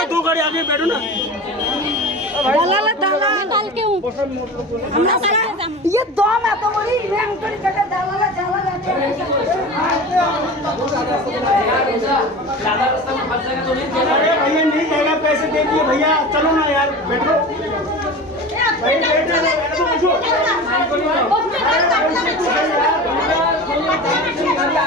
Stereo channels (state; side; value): normal; both; correlation 0.33